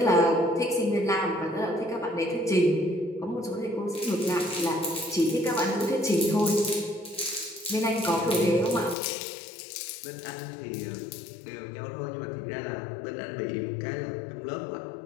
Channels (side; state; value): right; drops out; at 9.0 s